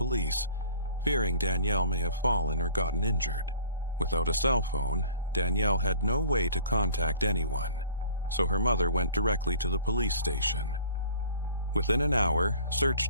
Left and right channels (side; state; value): both; inverted; correlation -0.49